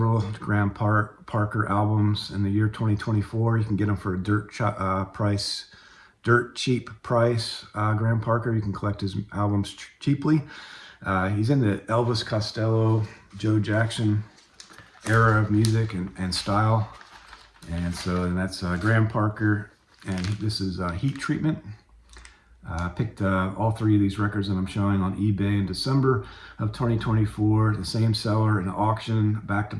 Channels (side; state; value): both; identical; correlation 1.00